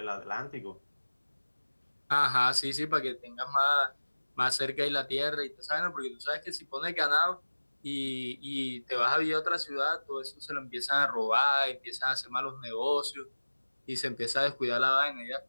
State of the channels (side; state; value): both; inverted; correlation -1.00